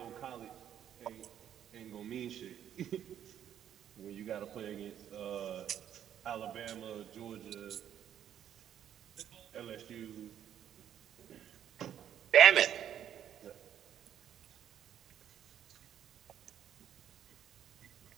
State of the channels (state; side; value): quieter; left; 10.1 dB